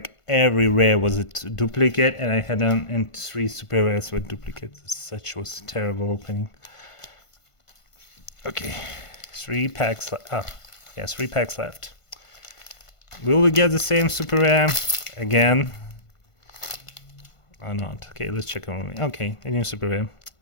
every rare was a duplicate, and I had and 3 super rares were duplicates. Such was a terrible opening. Okay, 3 packs left. Oh, yeah, 3 packs left. Will we get the same super rare again? Or not? Okay, let's check on. Okay, a new super rare.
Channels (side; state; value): right; late; 1.5 ms